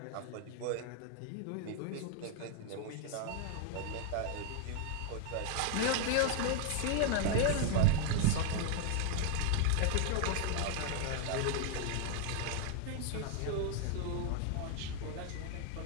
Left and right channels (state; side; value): different; both; correlation 0.00